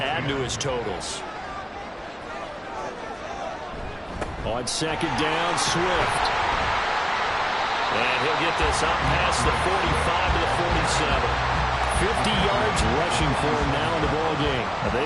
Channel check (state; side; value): identical; both; correlation 1.00